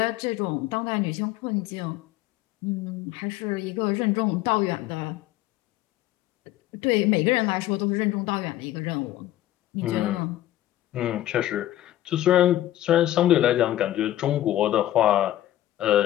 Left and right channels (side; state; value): right; quieter; 13.8 dB